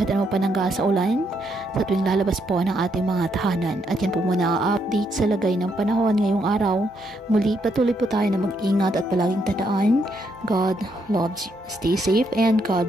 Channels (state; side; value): normal; both; correlation 0.76